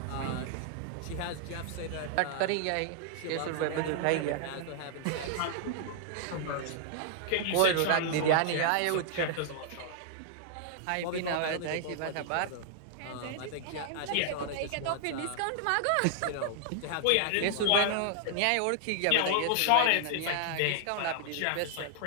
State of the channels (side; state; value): both; different; correlation 0.00